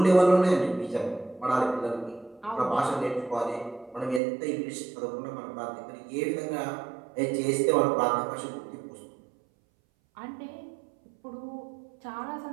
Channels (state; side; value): drops out; left; at 4.2 s